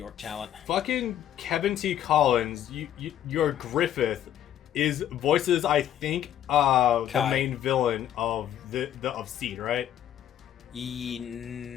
talent. Fucking Kevin T. Collins, your Griffith voices, I think, the main villain of of Seed, right?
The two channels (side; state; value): right; quieter; 11.0 dB